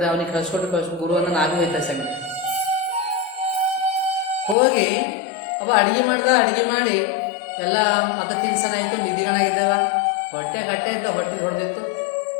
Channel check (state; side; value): drops out; right; at 4.5 s